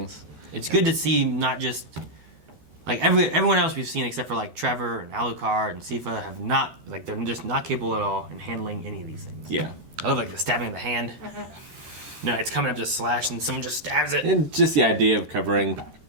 It's good to see not just, like, everyone else we've seen except for, like, Trevor and Alucard and Sypha have not, like, they're just not capable at all in handling any of these things. Yeah. I love, like, the stabbing of the hand. No, it's coming up to slash and someone just stabs it. And just the idea of covering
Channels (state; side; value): late; left; 13 ms